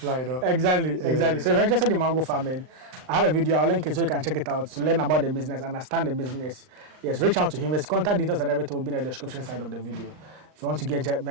Exactly. So if you're interested in mango farming, I have a video. I'll link it so you can check it out to learn about the business, understand the business. Yes, reach out to him. His contact details and everything will be in the description side of the video. If you want to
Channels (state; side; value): late; left; 39 ms